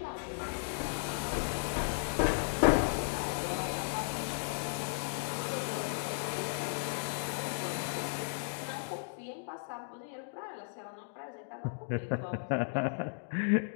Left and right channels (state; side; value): silent; right; digital silence